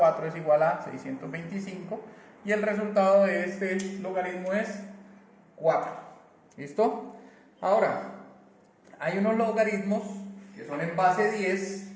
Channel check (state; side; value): identical; both; correlation 1.00